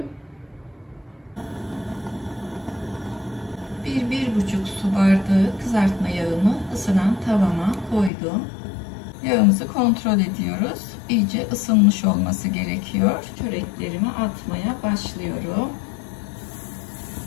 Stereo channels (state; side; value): drops out; right; at 8.1 s